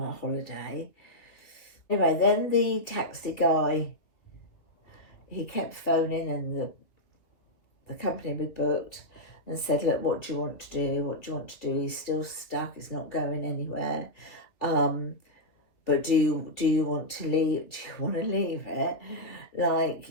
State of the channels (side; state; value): right; late; 2.4 ms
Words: holiday. Anyway, then the taxi guy, he kept phoning, and the company we booked, and said, look, what do you want to do? He's still stuck, he's not going anywhere. But do you want to leave? Do you want to leave it?